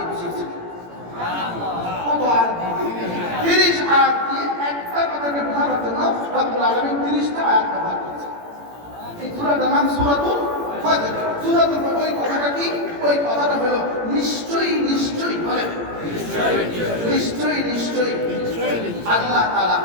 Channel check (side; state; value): left; late; 17 ms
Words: বুঝিয়েছেন কত আয়াত দিয়ে 30 আয়াত দিয়ে একটা কথাকে বোঝানোর জন্য রব্বুল আলামিন 30টা আয়াত ব্যবহার করেছেন এই সূরাটার নাম সূরাতুল ফজর সূরাতুল ফজর ওই কথাটা কি ওই কথাটা হলো নিশ্চয়ই বলেন নিশ্চয়ই আল্লাহ তাআলা